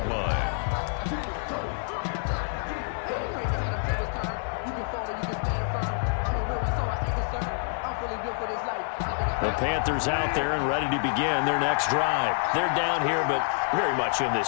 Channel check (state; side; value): silent; right; digital silence